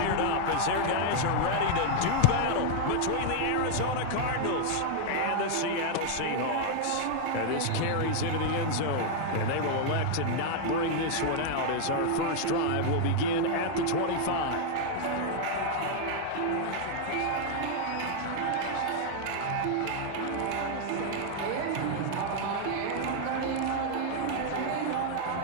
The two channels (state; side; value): different; both; correlation 0.00